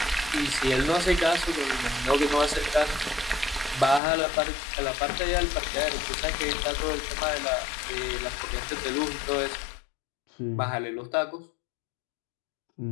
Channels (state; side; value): drops out; right; at 4.0 s